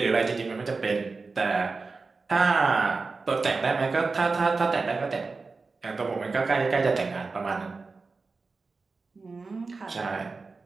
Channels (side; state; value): left; quieter; 4.1 dB